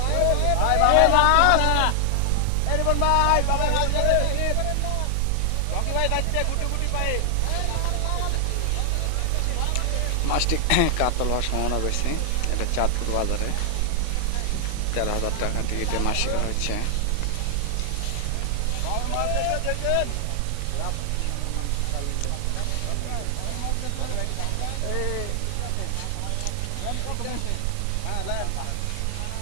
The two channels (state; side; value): different; both; correlation 0.00